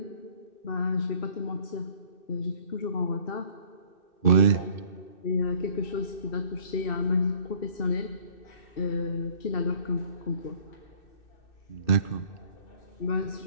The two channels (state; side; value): late; right; 2.6 ms